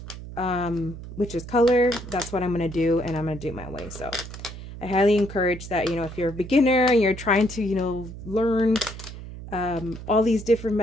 which is color, that's what I'm going to do, and I'm going to do it my way. So I highly encourage that, you know, if you're a beginner and you're trying to, you know, learn all these different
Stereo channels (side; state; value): right; noise; hum, 12 dB below the sound